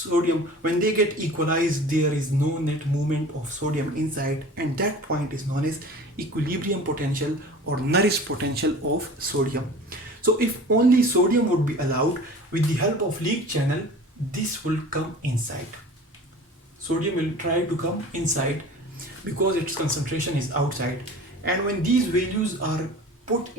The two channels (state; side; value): normal; both; correlation 0.41